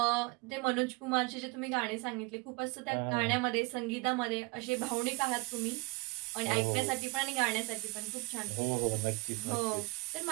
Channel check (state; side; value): quieter; left; 27.2 dB